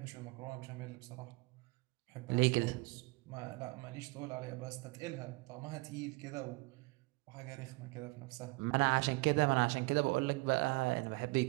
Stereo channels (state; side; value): quieter; left; 25.0 dB